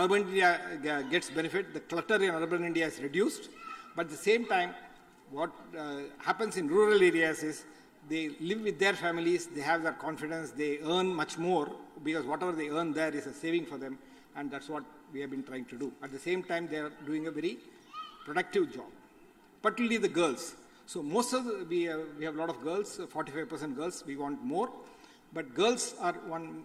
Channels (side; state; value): both; identical; correlation 1.00